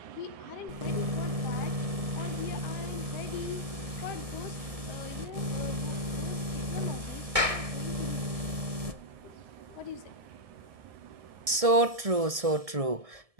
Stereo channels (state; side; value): late; left; 1.7 ms